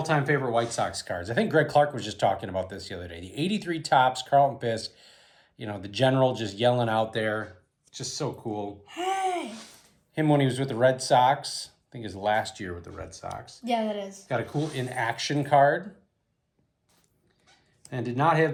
favorite White Sox cards. I think Greg Clark was just talking about this the other day. The 83 Topps, Carlton Fisk. You know, the general just yelling out there. Just so cool. Hey! Him when he was with the Red Sox. I think his last year with the Red Sox. Yeah, that is. Got a cool in-action card. And did not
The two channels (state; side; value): identical; both; correlation 1.00